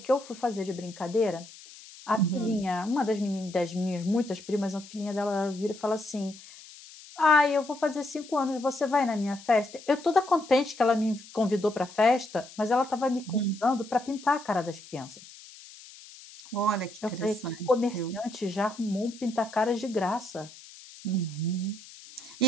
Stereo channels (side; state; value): left; noise; hiss, 19 dB below the sound